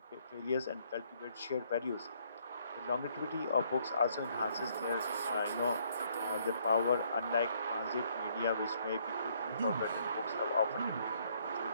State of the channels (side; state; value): both; inverted; correlation -0.68